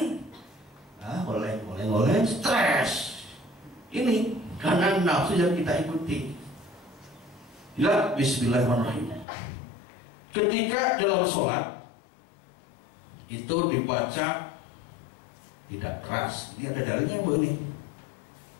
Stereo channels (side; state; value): right; drops out; at 9.2 s